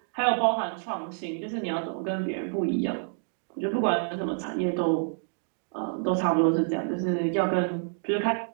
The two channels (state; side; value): silent; left; digital silence